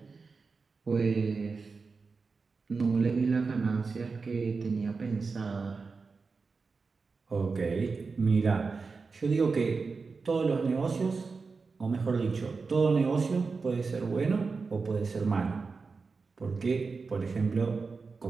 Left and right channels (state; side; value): quieter; left; 4.5 dB